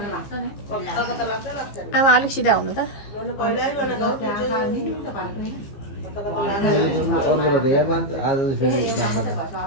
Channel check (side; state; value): right; late; 15 ms